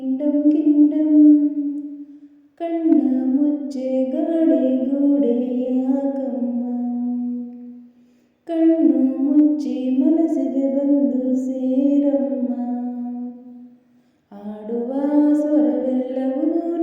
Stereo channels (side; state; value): both; identical; correlation 1.00